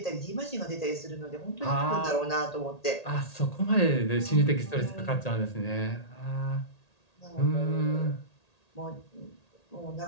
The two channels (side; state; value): right; late; 1.8 ms